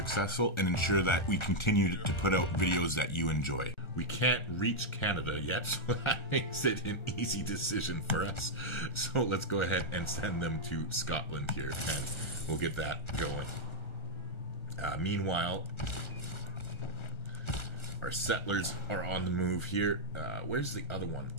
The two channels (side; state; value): right; late; 1.3 ms